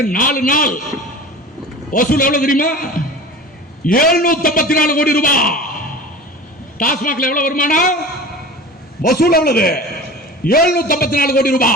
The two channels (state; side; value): normal; both; correlation 0.36